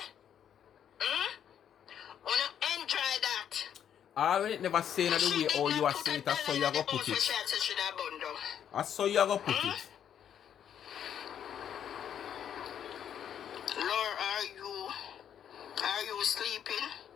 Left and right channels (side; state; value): right; quieter; 9.2 dB